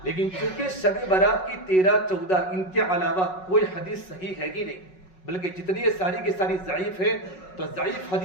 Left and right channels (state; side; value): late; right; 5.4 ms